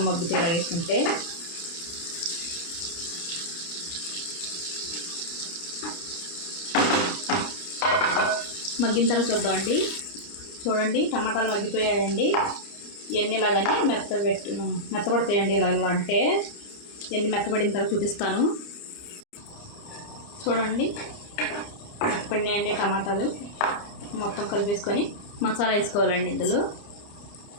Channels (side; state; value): right; late; 29 ms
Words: మగ్గుతాయి ఇలా వేసుకుంటే. మగ్గిన తర్వాత చూద్దామండి. చూడండి, టమాటాలు మగ్గిపోయాయండి. ఇవన్నీ ఇలాగని మెత్తపడతాయండి. ఇలా అంటే ఇవన్నీ మెత్తపడిన తర్వాత చూపిస్తాను. చూడండి, మెత్తపడినాయండి టమాటాలు. మొత్తం కలిపేసుకొని మసాలా వేసుకోవాలండి. ఇందులో